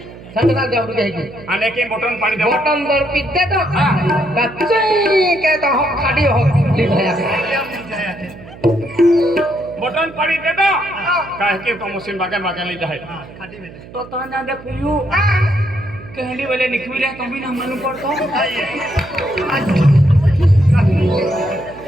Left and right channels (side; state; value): right; noise; hum, 18 dB below the sound